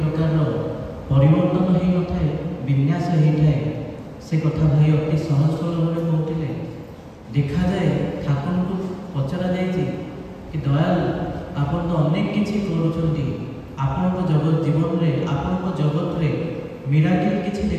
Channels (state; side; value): identical; both; correlation 1.00